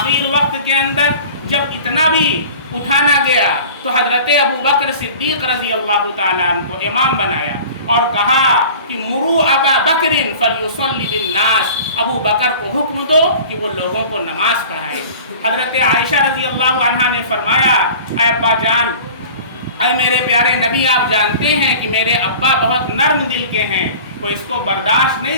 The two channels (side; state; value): both; inverted; correlation -0.41